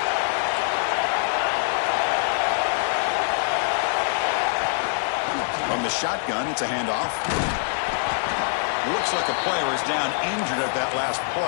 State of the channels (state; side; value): silent; right; 62 dB below the other